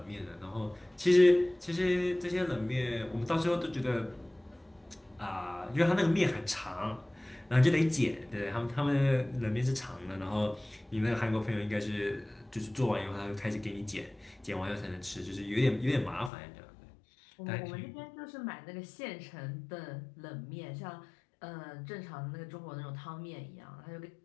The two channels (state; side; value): drops out; right; at 16.3 s